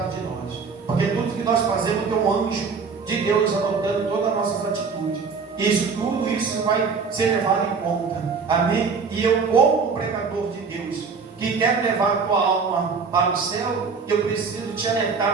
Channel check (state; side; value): quieter; left; 5.2 dB